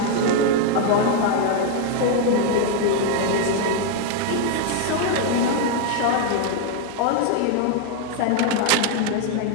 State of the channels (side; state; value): both; different; correlation 0.01